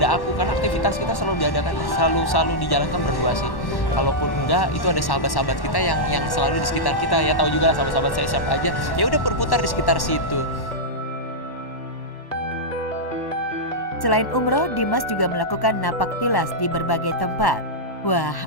aku, karena aktivitas kita selalu diadakan, selalu dijalankan berdua sih. Kalaupun enggak, itu ada sahabat-sahabat kita yang selalu di sekitar kita, ya tahu juga lah sahabat-sahabat saya siapa aja. Ya udah berputar di sekitar situ. Selain umroh, Dimas juga melakukan napak tilas di berbagai tempat. Wah,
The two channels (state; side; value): late; right; 1.1 ms